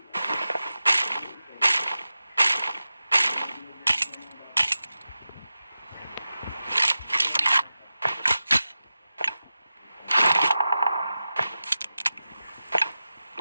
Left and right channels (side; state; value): both; inverted; correlation -0.93